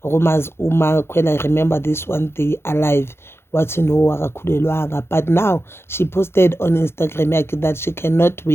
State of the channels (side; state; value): right; late; 0.12 ms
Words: rumors Umakhwela, remember this one day alive. What you know akakhulelwanga, but now she posted on Instagram that she cannot